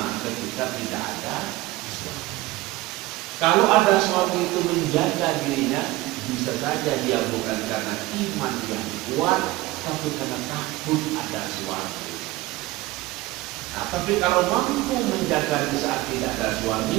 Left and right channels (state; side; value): quieter; left; 19.0 dB